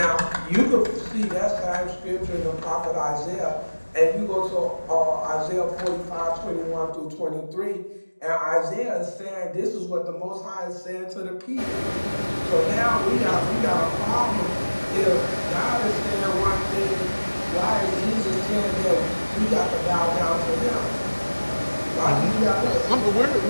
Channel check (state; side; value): inverted; both; correlation -1.00